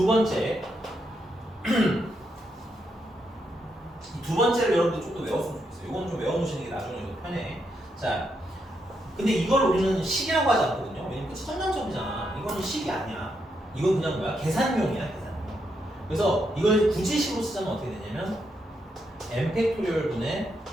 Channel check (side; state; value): both; normal; correlation 0.80